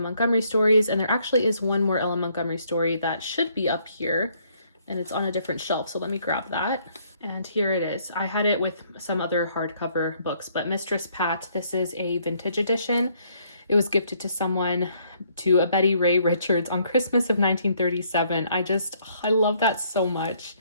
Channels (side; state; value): both; inverted; correlation -0.67